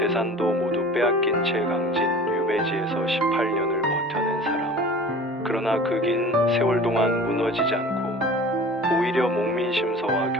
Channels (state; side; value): normal; both; correlation 0.41